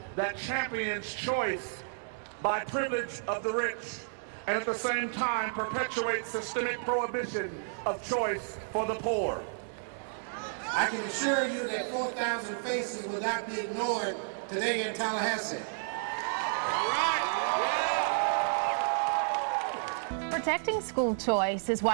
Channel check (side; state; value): left; silent; digital silence